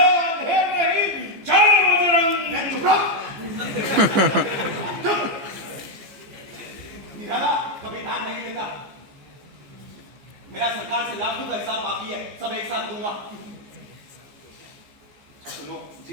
अंधेर नहीं। जय बजरंग। चुप रहो। चुप। निराला कभी ध्यान नहीं देता। मेरा सरकार से लाखों का हिसाब बाकी है, सब एक साथ दूंगा। सुनो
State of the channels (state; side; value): late; left; 15 ms